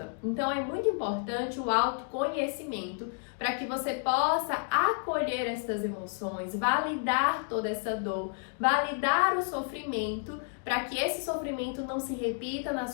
Então é muito importante o autoconhecimento para que você possa acolher essas emoções, validar toda essa dor, validar o sofrimento, para que esse sofrimento não se repita na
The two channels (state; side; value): silent; right; 57 dB below the other